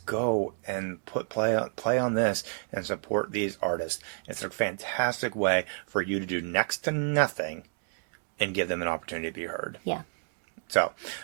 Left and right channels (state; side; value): silent; left; digital silence